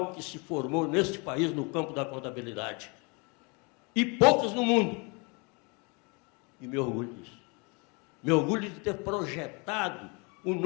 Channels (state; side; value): quieter; right; 30.9 dB